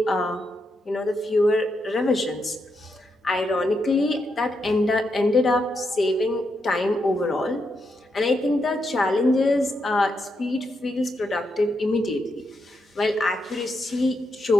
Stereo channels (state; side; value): normal; both; correlation 0.82